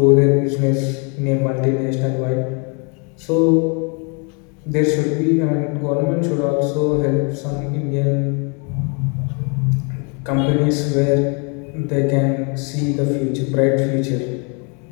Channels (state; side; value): quieter; right; 35.2 dB